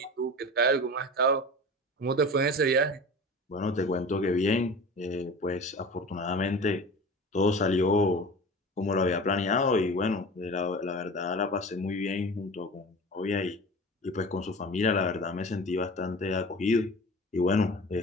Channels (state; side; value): normal; both; correlation 0.36